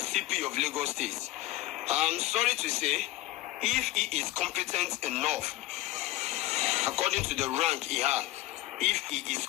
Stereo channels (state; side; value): quieter; right; 17.2 dB